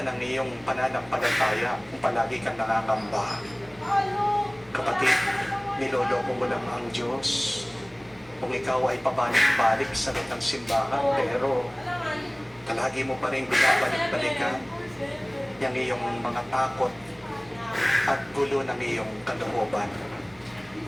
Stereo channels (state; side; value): noise; right; hum, 27 dB below the sound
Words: ng iyong pananampalataya kung palagi kang nangangamba? Kapatid, niloloko mo lang ang Diyos kung ikaw ay pabalik-balik sa loob ng simbahan, pero palagi mo pa rin binabalik-balikan yung iyong mga takot at gulo ng iyong kalooban.